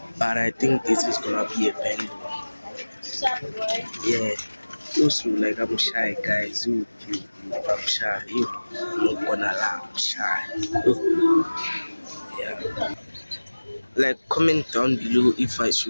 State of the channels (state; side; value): inverted; both; correlation -1.00